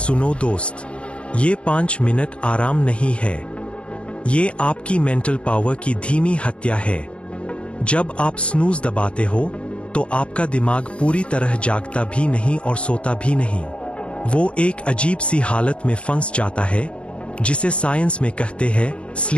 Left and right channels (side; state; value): right; late; 0.059 ms